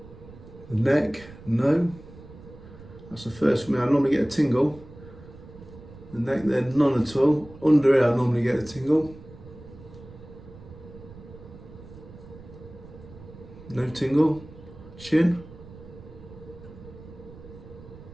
The neck, no. That's the first for me. I normally get a tingle. The neck there, none at all. Under here, I normally get a tingle. No tingle. Chin.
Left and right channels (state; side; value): noise; right; rumble, 18 dB below the sound